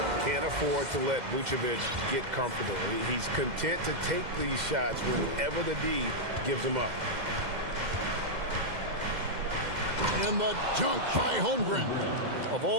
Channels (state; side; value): late; left; 2.1 ms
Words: Can't afford to let Vucevic get comfortable. He's content to take these shots whenever the D gives them up. And the dunk by Holmgren. Of